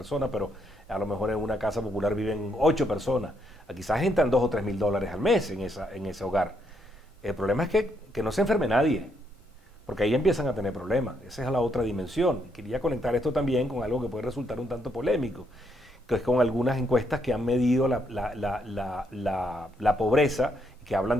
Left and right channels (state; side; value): normal; both; correlation 0.75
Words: pero a lo mejor en una casa popular viven 8 personas. Quizás entran $2 o 3 mil dólares al mes en ese hogar. El problema es que no se enferme nadie, porque ahí empiezan a tener problemas. Esa es la otra dimensión. Quería conectar esto también con algo que puede resultar un tanto polémico, que es con algunas encuestas que han medido la pobreza, que hablan